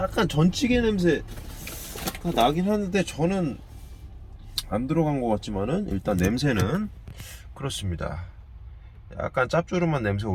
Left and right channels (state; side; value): identical; both; correlation 1.00